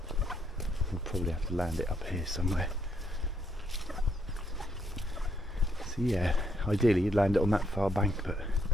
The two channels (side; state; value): both; normal; correlation 0.74